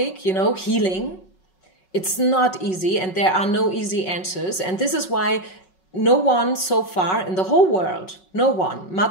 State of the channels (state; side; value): late; right; 5.4 ms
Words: you know, healing. It's not easy and there are no easy answers. And this is why no one so far in the whole world, no one,